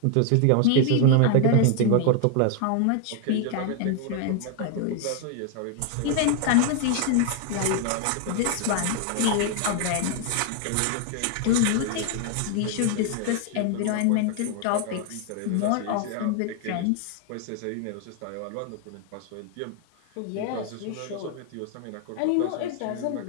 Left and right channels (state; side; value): different; both; correlation 0.00